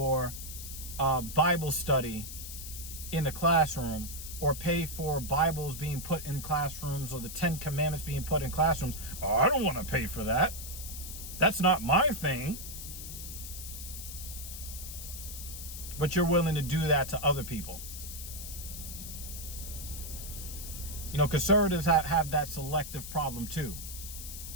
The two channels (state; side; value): noise; left; hiss, 9 dB below the sound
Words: Bible study in the classroom, or pay for Bibles being put in classrooms, or the 10 Commandments being put in classrooms, oh, I don't want to pay for that. That's not my thing. But you're willing to do that to other people. You know, conservatives have that selective problem too.